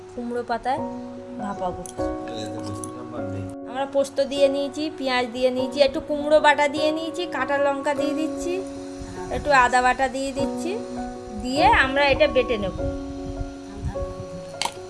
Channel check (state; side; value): identical; both; correlation 1.00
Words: কুমড়ো পাতায় ভাপাবো। আমরা পোস্ত দিয়ে নিয়েছি, পেঁয়াজ দিয়ে নিয়েছি, একটু কুমড়ো বাটা দিয়ে নিয়েছি, কাঁচা লঙ্কা দিয়ে দিচ্ছি, একটু আদা বাটা দিয়ে দিচ্ছি, দিয়ে আমরা এটা বেটে নেব।